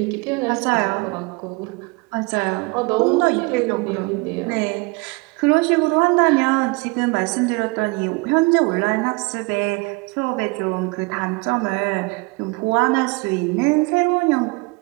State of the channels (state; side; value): quieter; left; 27.6 dB